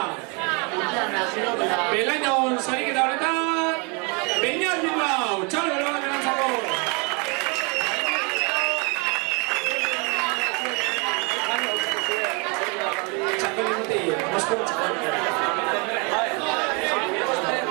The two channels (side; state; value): left; quieter; 32.1 dB